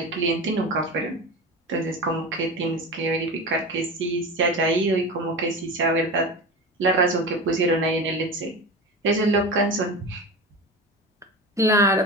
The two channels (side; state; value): both; normal; correlation 0.27